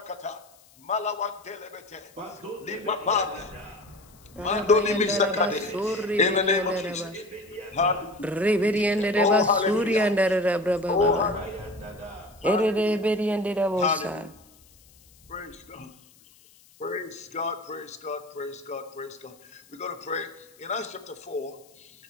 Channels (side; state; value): left; noise; hiss, 27 dB below the sound